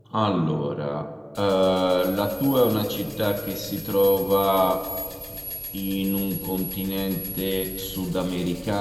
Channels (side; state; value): both; identical; correlation 1.00